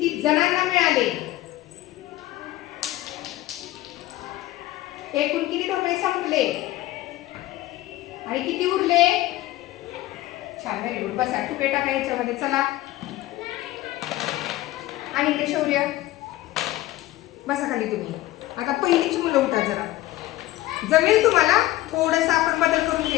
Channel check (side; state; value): right; quieter; 16.3 dB